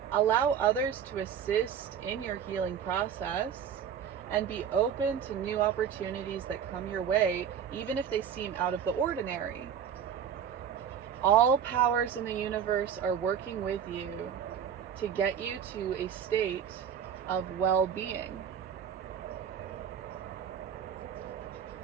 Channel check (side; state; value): left; quieter; 8.4 dB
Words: Allow others to assist in your healing process, and be open to new opportunities that come your way, even if they seem out of the ordinary. All powers in the universe are working with you to get you to a state of well-being.